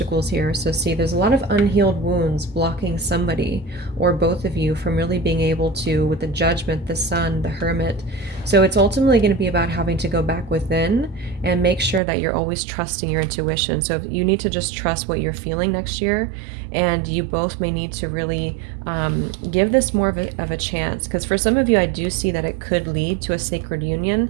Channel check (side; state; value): left; drops out; at 12.0 s